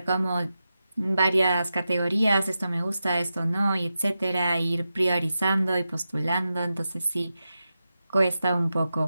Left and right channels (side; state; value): both; inverted; correlation -0.90